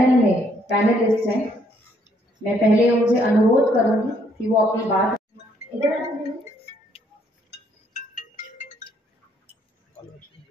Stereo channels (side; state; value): both; normal; correlation 0.69